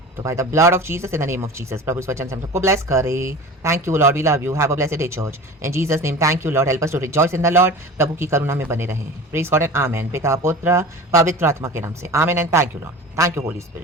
तो by the blood of Jesus, in the name of Jesus, प्रभु इस वचन से हम सबको ब्लेस करे। Thank you lord, we love you, have a blessed day church in Jesus name. Thank you lord, help us to rejoice in the lord. प्रभु की करुणा में बने रहें। Praise God and amen. पिता पुत्र पवित्र आत्मा के नाम से amen and thank you lord, thank you Holi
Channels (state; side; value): normal; both; correlation 0.36